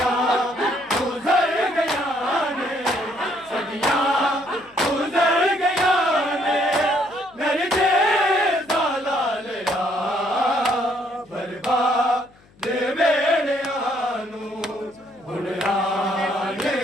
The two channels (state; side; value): noise; left; hum, 30 dB below the sound